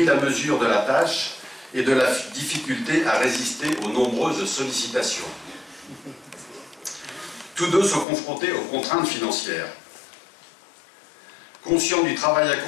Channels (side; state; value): right; drops out; at 8.1 s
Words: la mesure de la tâche et de la difficulté à résister aux nombreuses sollicitations. Tous deux sont confrontés aux contraintes financières. Conscients du travail